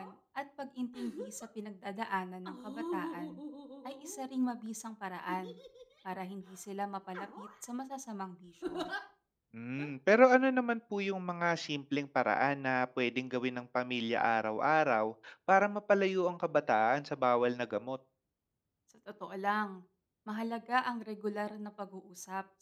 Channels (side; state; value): both; identical; correlation 1.00